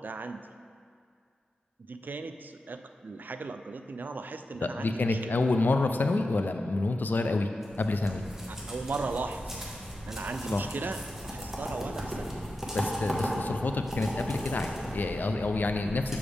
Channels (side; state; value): both; normal; correlation 0.90